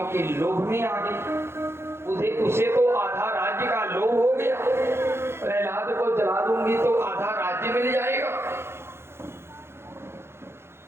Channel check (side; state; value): left; late; 0.12 ms